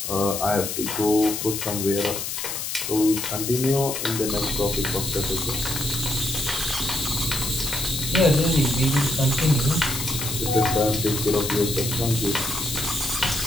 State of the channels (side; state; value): left; noise; hiss, 4 dB below the sound